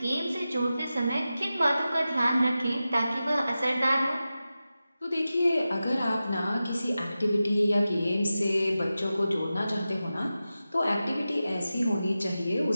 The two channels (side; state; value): both; inverted; correlation -0.93